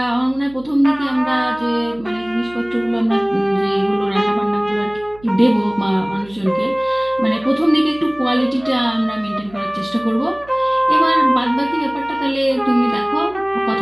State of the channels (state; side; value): noise; right; hum, 23 dB below the sound